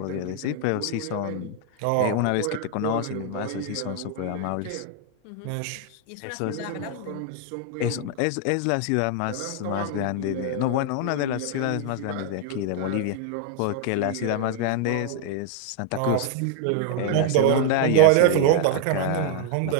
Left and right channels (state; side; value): different; both; correlation 0.00